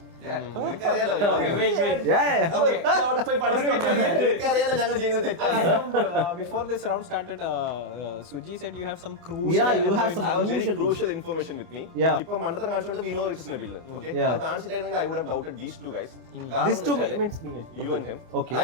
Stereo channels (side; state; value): left; late; 24 ms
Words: നിനക്കറിയാലോ ഞങ്ങൾ ചെയ്യുന്നത് തെറ്റാണ്. Before this round started, Suji said you have some Yeah, you have some I have very crucial crucial information with me. Yeah. ഇപ്പൊ മണ്ടത്തരം കാണിച്ചുകൊണ്ട് we know it is Nabil. Okay? Yeah. അത് കാണിച്ചിട്ടായിരുന്നെങ്കിൽ I would have doubted these 2 guys. These two means me. You and him. Okay.